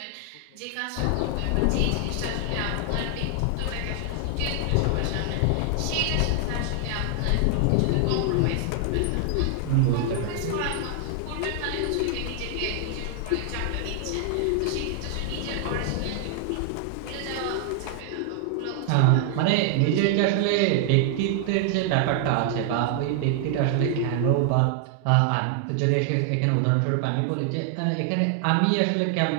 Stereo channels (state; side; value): different; both; correlation 0.00